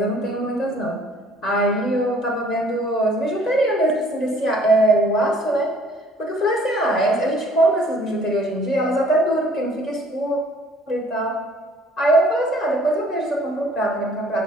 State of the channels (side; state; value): both; normal; correlation 0.57